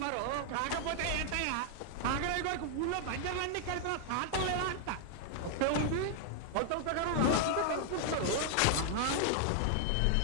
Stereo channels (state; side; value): different; both; correlation 0.00